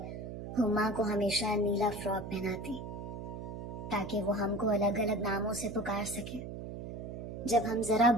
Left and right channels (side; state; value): right; noise; hum, 8 dB below the sound